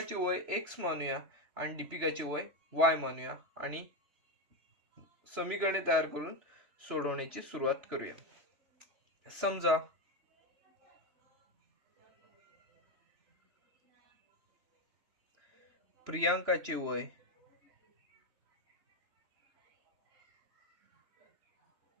वय x मानूया आणि दीपिकाचे वय y मानूया आणि समीकरणे तयार करून सोडवण्याची सुरुवात करूया. समजा प्रियांकाचे वय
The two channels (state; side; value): late; left; 3.0 ms